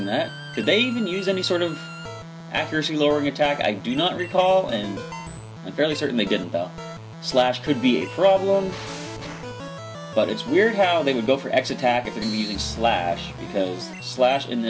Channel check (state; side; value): identical; both; correlation 1.00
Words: that? Did they even use any sort of accuracy lowering attack? I do not recall, and I'm fairly certain they didn't though. Slash could be a problem, but it's weird how they would go for X attack if they're going to be using Slash, because Slash in